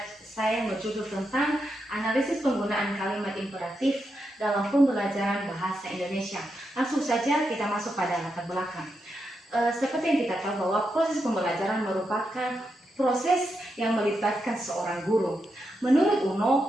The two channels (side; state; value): both; normal; correlation 0.85